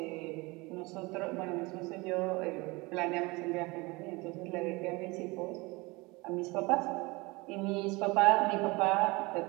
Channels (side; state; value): left; quieter; 24.4 dB